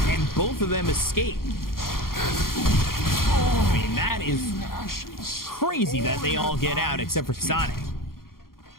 and both of them escape. I mean, that is crazy that they all get out except for Sonic.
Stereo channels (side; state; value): right; late; 0.92 ms